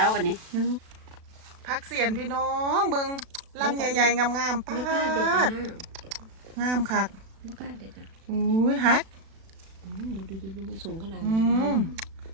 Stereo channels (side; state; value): left; late; 36 ms